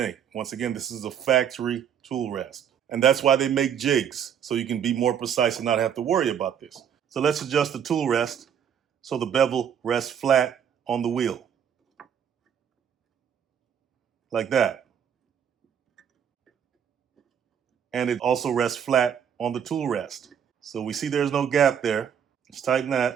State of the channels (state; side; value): quieter; left; 8.4 dB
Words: Once again, this is a factory tool rest. And that's why they make jigs, so you can be more precise and not have to worry about this. So let's adjust the tool rest so the bevel rests flat on the wheel. Like that. And it also rests flat on the tool rest. So we see there's no gap there. Let's tighten